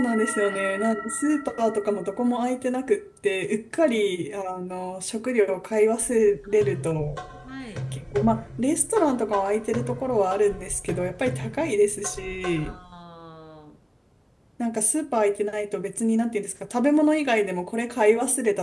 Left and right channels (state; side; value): identical; both; correlation 1.00